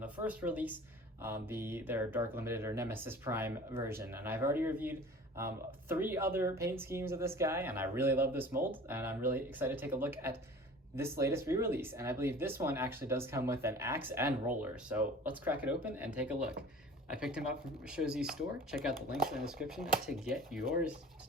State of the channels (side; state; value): both; normal; correlation 0.43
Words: first release, their Dark Limited or Nemesis Prime version. And I've already reviewed 3 other paint schemes of this guy, and I really love this mold, and I'm really excited to take a look at this latest re-release. And I believe this one actually does come with an axe and roller, so let's crack it open and take a look. I picked him up from Showzi's store. Check out the links in the description to get yours